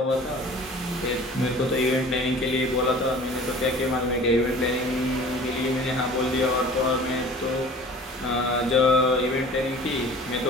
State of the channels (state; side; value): normal; both; correlation 0.45